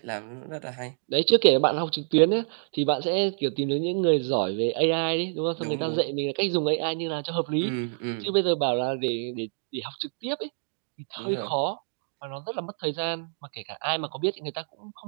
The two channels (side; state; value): left; silent; 60 dB below the other